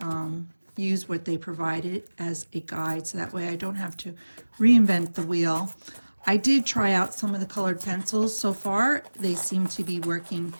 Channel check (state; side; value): inverted; both; correlation -1.00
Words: use what they provided as a guide, so that way I don't have to reinvent the wheel. I did try out some of the colored pencils so far. They seem to be working